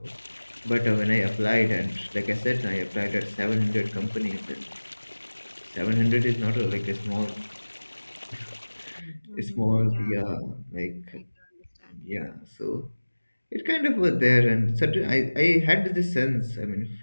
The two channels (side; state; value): both; inverted; correlation -1.00